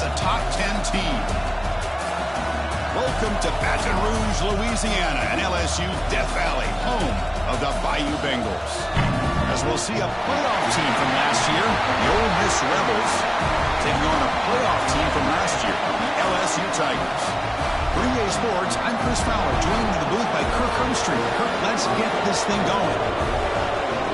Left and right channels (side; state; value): both; identical; correlation 1.00